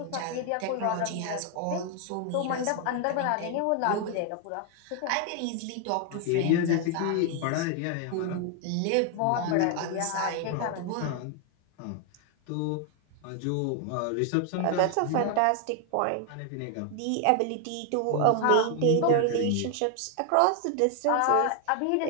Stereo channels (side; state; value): both; different; correlation 0.00